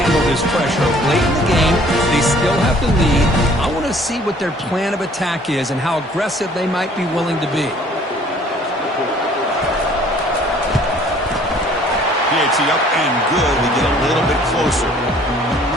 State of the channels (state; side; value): normal; both; correlation 0.56